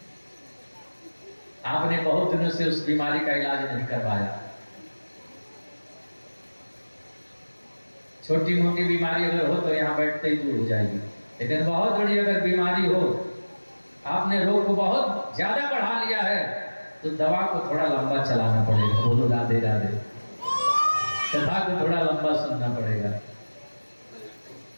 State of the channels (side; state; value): both; inverted; correlation -1.00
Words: आपने बहुत दिनों से उस बीमारी का इलाज नहीं करवाया। छोटी मोटी बीमारी अगर हो तो यहाँ बैठते ही दूर हो जाएगी, लेकिन बहुत बड़ी अगर बीमारी हो, आपने रोग को बहुत ज्यादा बढ़ा लिया है, तो दवा को थोड़ा लंबा चलाना पड़ेगा। बोलो राधे राधे। कथा को थोड़ा लंबा सुनना पड़ेगा।